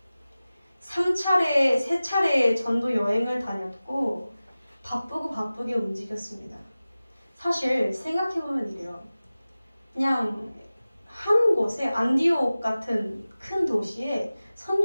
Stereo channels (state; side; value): inverted; both; correlation -0.97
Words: 3차례의 전도 여행을 다녔고 바쁘게 움직였습니다. 사실 생각해보면 이래요. 그냥 한 곳에 안디옥 같은 큰 도시에